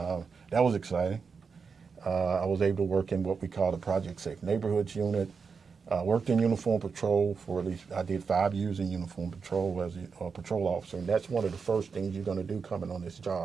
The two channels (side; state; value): left; quieter; 5.5 dB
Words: was exciting. I was able to work in what we call the Project Safe Neighborhoods unit. Worked in uniform patrol for at least, I did 5 years in uniform patrol as a patrol officer, and that's one of the first things you're going to do coming on this